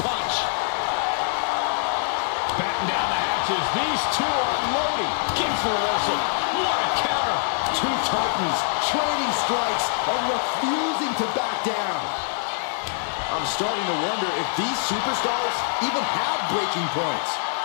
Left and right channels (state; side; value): silent; right; 62 dB below the other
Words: punch. Batten down the half matches. These two are loading. King for reversal. What a counter. Two titans trading strikes and refusing to back down. I'm starting to wonder if these superstars even have breaking points.